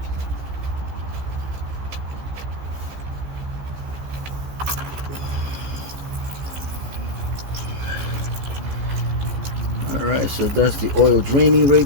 Alright, so that's the oil draining right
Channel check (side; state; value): left; late; 15 ms